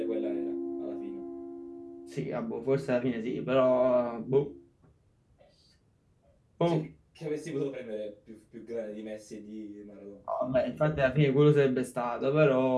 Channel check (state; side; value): identical; both; correlation 1.00